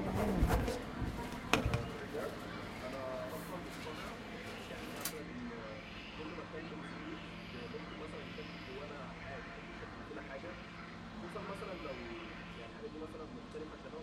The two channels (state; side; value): identical; both; correlation 1.00